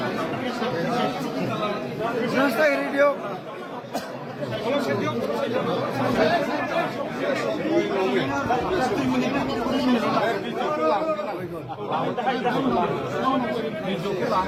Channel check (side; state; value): both; identical; correlation 1.00